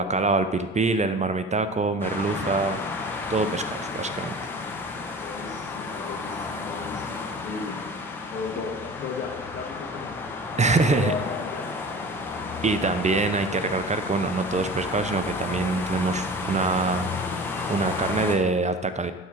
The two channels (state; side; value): normal; both; correlation 0.39